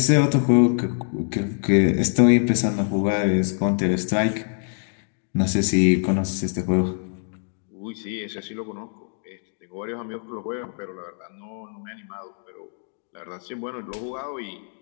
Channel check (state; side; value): silent; right; digital silence